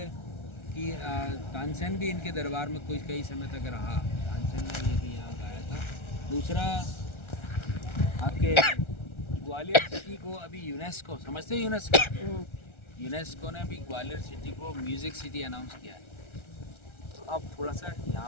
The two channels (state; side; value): late; right; 1.3 ms